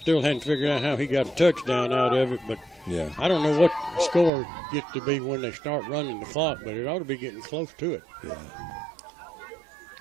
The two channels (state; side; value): drops out; left; at 4.3 s